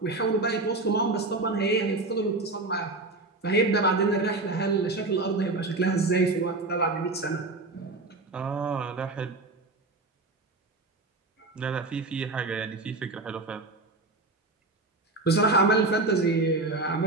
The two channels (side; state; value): left; quieter; 3.2 dB